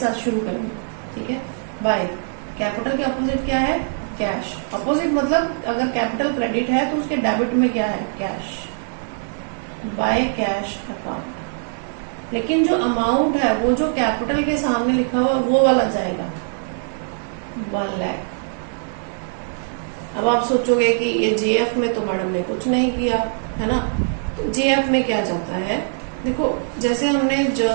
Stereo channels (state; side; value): silent; left; digital silence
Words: शुरू करेंगे। ठीक है, बाय। कैपिटल के अपोजिट क्या है? कैश। अपोजिट मतलब अगर कैपिटल क्रेडिट है तो उसके डेबिट में क्या है? कैश। By cash account. लेकिन जो अमाउंट है वो जो कैपिटल के सामने लिखा हुआ वो वाला जाएगा 1 लाख। अब आप सोचोगे कि ये जेएफ में तो मैडम ने कुछ नहीं किया है ना, तो जेएफ में क्या जाता है? देखो जैसे हमने